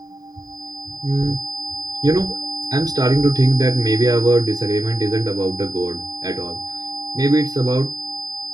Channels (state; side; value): late; left; 0.18 ms